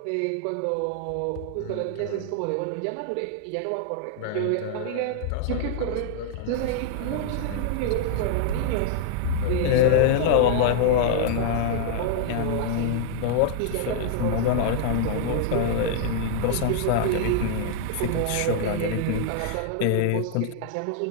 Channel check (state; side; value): different; both; correlation -0.01